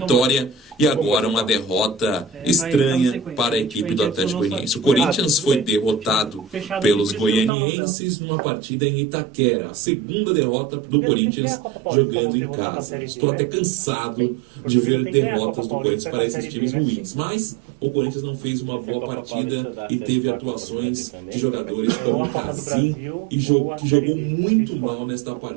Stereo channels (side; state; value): left; drops out; at 7.5 s